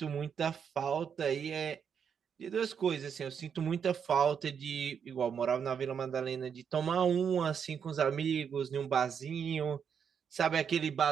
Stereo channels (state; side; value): quieter; left; 7.3 dB